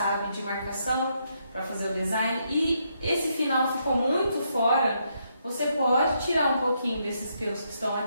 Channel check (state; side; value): inverted; both; correlation -0.77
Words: de marcação para fazer o design e esse final ficou muito fora, você pode tirar um pouquinho desses pelos que estão